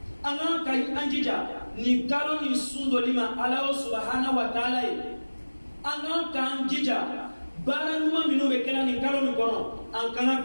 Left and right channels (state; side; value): inverted; both; correlation -1.00